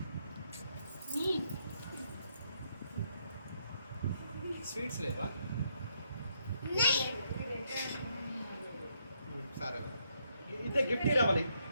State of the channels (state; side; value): inverted; both; correlation -0.75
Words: స్వీట్స్ లేవా? సరే, ఇదే గిఫ్ట్ రావాలి.